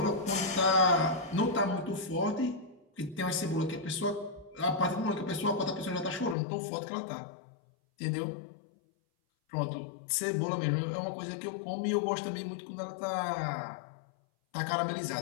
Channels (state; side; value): drops out; right; at 6.4 s